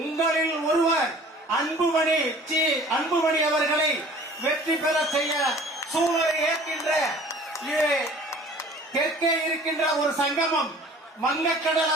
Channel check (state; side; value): normal; both; correlation 0.48